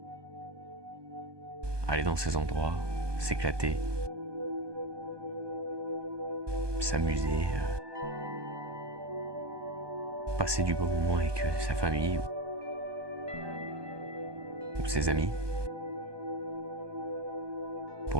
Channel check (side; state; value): left; late; 1.2 ms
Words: aller dans ces endroits, s'éclater, s'amuser, passer du bon moment avec sa famille ou ses amis.